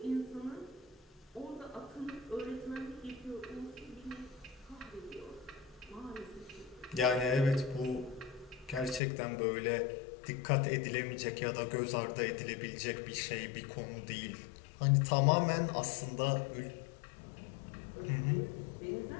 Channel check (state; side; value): drops out; right; at 9.0 s